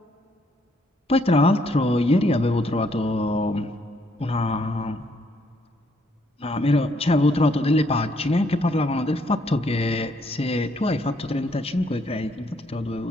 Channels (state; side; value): normal; both; correlation 0.70